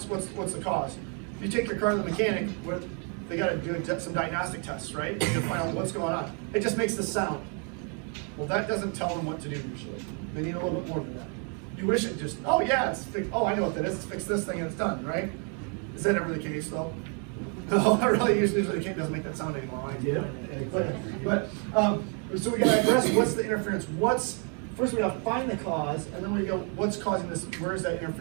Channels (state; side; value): quieter; left; 39.3 dB